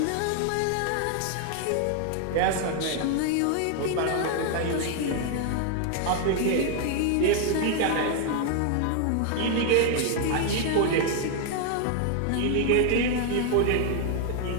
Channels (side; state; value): both; different; correlation 0.00